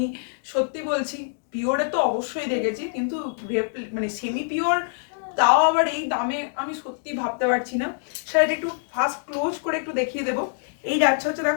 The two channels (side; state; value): right; silent; digital silence